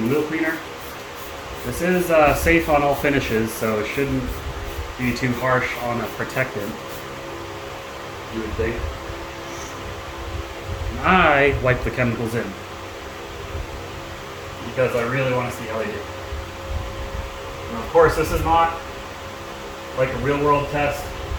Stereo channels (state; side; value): identical; both; correlation 1.00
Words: Wheel Cleaner. This is safe on all finishes, so it shouldn't be too harsh on a protectant, you would think. And I wipe the chemicals in because I really want to see how they do. And of course, this is not like a real world test.